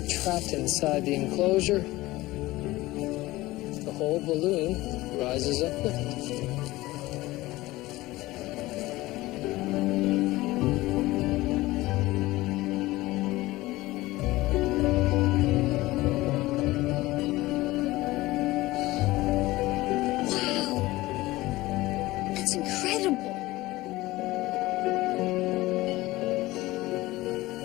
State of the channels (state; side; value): quieter; right; 18.7 dB